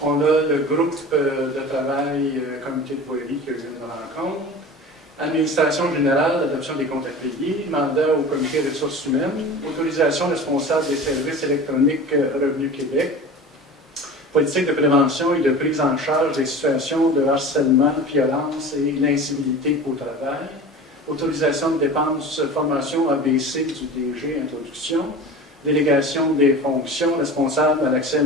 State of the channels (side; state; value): both; normal; correlation 0.36